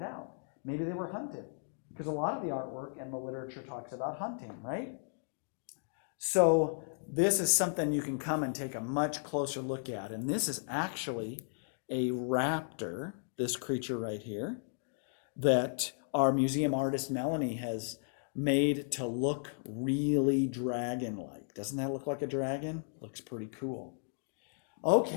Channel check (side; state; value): right; silent; digital silence